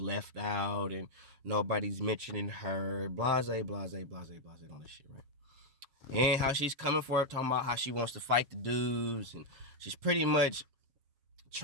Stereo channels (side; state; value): left; late; 7.2 ms